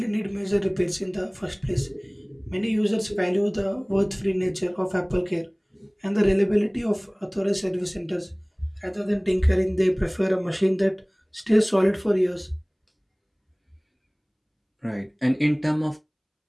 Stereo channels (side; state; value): both; identical; correlation 1.00